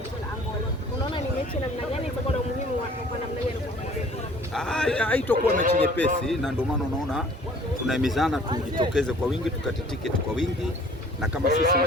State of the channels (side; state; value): both; normal; correlation 0.52